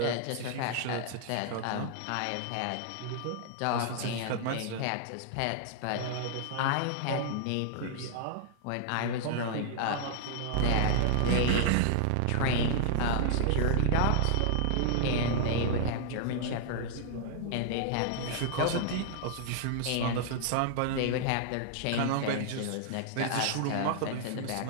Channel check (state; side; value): different; both; correlation -0.01